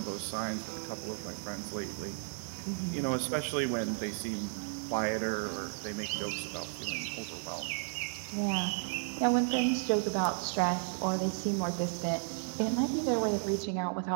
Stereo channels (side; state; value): left; silent; 55 dB below the other